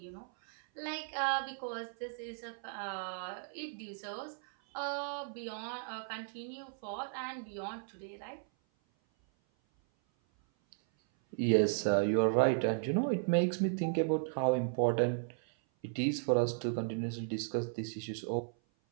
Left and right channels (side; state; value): left; silent; 54 dB below the other